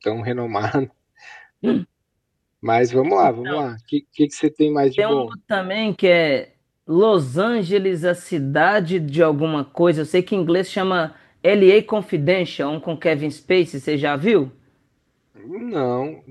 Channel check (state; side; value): identical; both; correlation 1.00